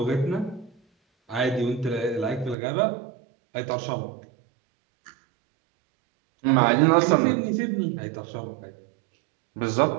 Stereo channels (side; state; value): left; drops out; at 2.6 s